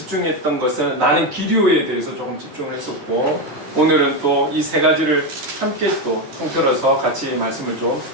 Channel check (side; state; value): left; late; 13 ms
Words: 것은 나는 길이요에 대해서 조금 집중을 했었고, 오늘은 또 이 세 가지를 함께 또 통틀어서 같이 말씀을 좀